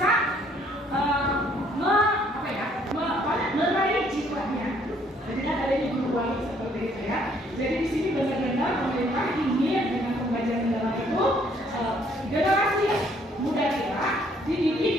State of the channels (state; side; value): normal; both; correlation 0.64